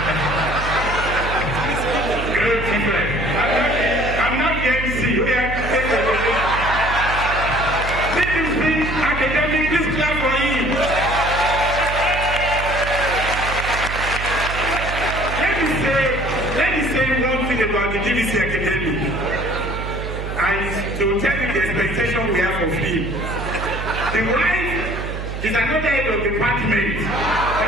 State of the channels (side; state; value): right; noise; hum, 6 dB below the sound